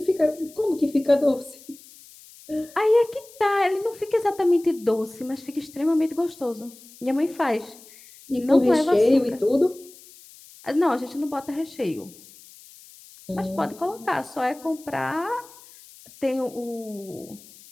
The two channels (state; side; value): noise; left; hiss, 22 dB below the sound